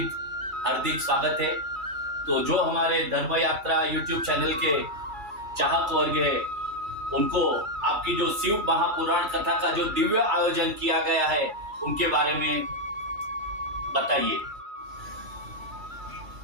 हार्दिक स्वागत है। तो जो हमारे धर्म यात्रा यूट्यूब चैनल के चाहक वर्ग है, उनको आपकी जो शिव महापुराण कथा का जो दिव्य आयोजन किया गया है, उनके बारे में बताइए।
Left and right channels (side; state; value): left; late; 2.3 ms